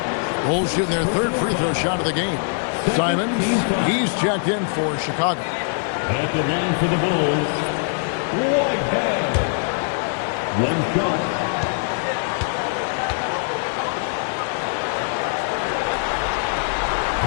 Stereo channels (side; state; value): right; silent; digital silence